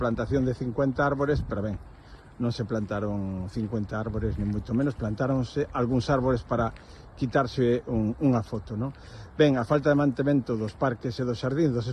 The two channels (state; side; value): identical; both; correlation 1.00